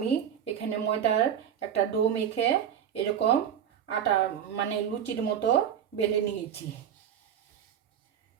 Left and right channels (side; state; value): left; quieter; 9.2 dB